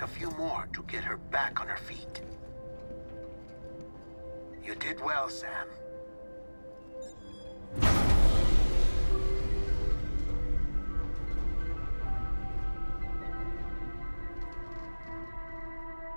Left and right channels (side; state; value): both; inverted; correlation -1.00